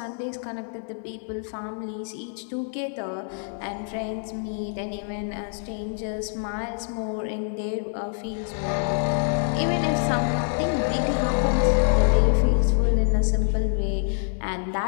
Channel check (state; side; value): silent; right; 61 dB below the other